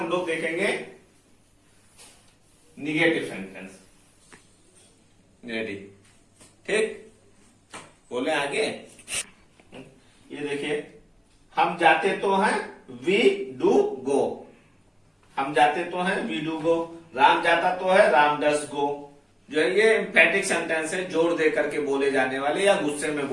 लोग देखेंगे निगेटिव सेंटेंस। रेडी? ठीक, बोले आगे। ये देखिए, हम जाते तो हैं, वी डू गो। हम जाते तो हैं, वी डू गो। राम जाता तो है, राम डस गो। जो है ये एम्फैटिक सेंटेंस है, जोर दे करके बोले जाने वाले या गुस्से में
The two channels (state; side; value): identical; both; correlation 1.00